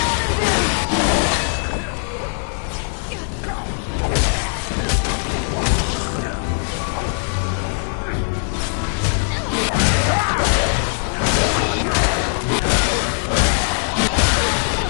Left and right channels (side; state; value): right; silent; 59 dB below the other